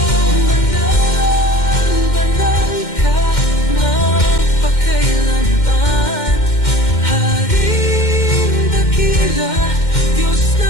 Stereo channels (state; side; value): late; right; 2.1 ms